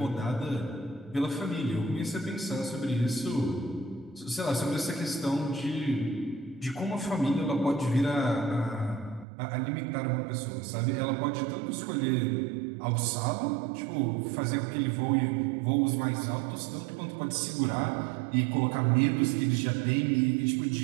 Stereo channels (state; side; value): drops out; left; at 9.2 s